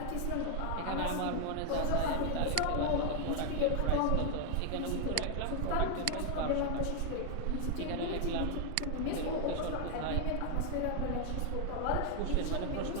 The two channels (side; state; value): both; different; correlation 0.00